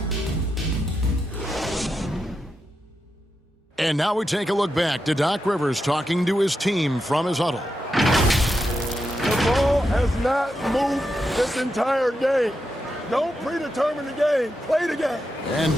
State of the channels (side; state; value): both; normal; correlation 0.87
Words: And now we take a look back to Doc Rivers talking to his team from his huddle. The ball has not moved this entire game. Don't predetermine the game. Play the game. And